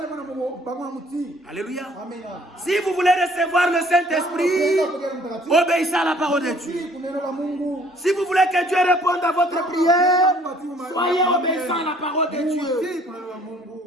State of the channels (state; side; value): normal; both; correlation 0.58